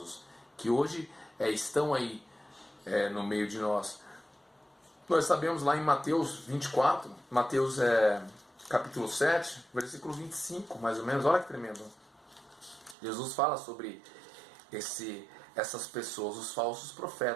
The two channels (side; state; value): left; drops out; at 13.0 s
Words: que hoje estão aí no meio de nós. Nós sabemos lá em Mateus 24, Mateus capítulo 7, versículo 25, mais ou menos. Olha que tremendo. Jesus fala sobre essas pessoas, os falsos